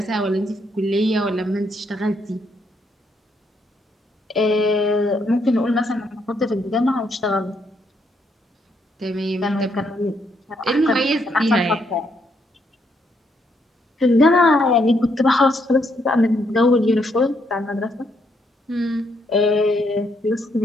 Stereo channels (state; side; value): normal; both; correlation 0.75